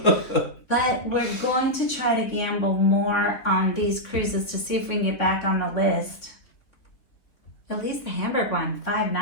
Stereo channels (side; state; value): right; late; 3.7 ms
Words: But we're going to try to gamble more on these cruises to see if we can get back on the list. At least the Hamburg one, 5